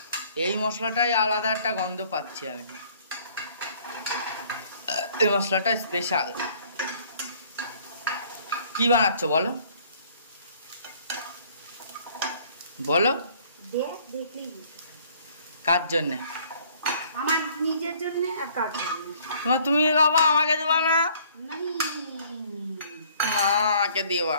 এই মশলাটাই আলাদা একটা গন্ধ পাচ্ছি আমি। এই মশলাটা স্পেশাল। কি বানাচ্ছ বলো, বলো। কার জন্য? আমার নিজের জন্য। আর কার জন্য? তুমি বাবা আমাকে দেবা না? আমাকে দেবা।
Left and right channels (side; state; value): both; inverted; correlation -0.58